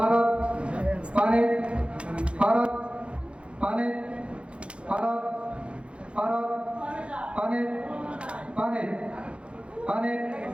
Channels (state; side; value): late; left; 0.059 ms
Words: পানি পারক পানি পারক পারক পানি পানি পানি